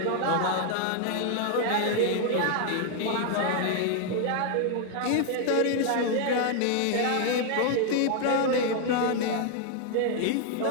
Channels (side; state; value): both; different; correlation 0.00